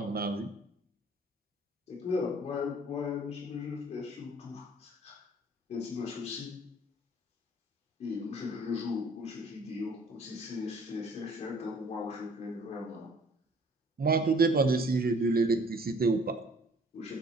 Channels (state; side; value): normal; both; correlation 0.56